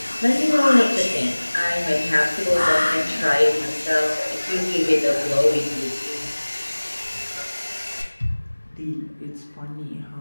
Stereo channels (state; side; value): inverted; both; correlation -1.00